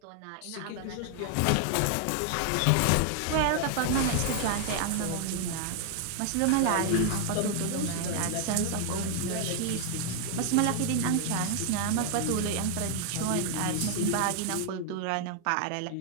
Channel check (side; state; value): both; different; correlation 0.00